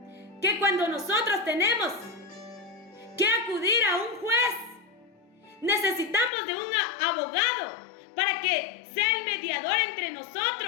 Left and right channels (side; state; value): right; drops out; at 6.3 s